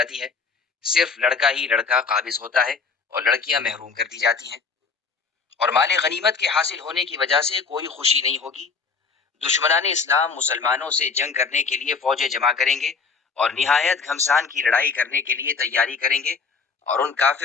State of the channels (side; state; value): right; quieter; 5.0 dB